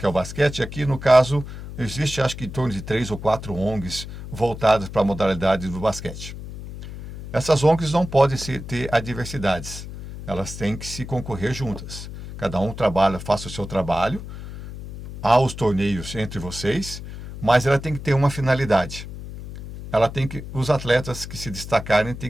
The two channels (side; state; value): left; noise; hum, 11 dB below the sound